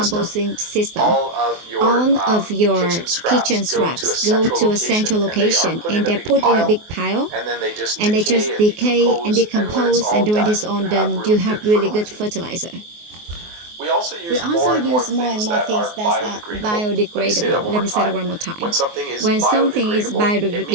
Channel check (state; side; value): late; left; 24 ms